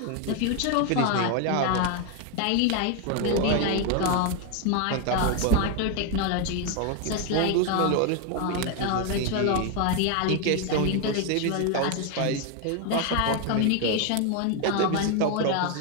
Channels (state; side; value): different; both; correlation 0.01